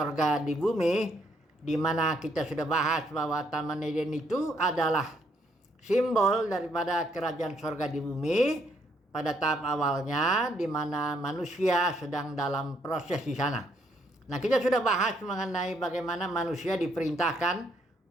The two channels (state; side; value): normal; both; correlation 0.71